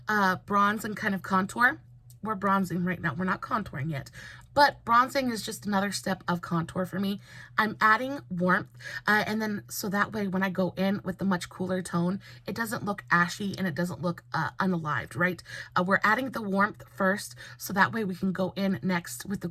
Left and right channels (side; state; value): both; identical; correlation 1.00